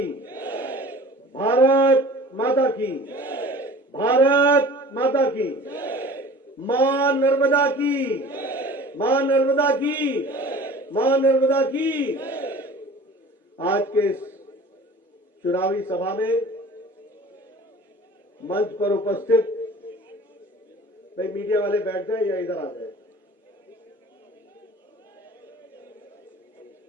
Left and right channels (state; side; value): normal; both; correlation 0.43